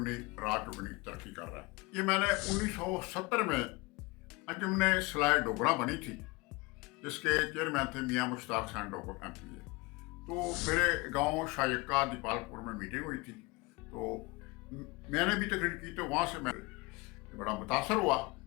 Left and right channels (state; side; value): quieter; right; 24.9 dB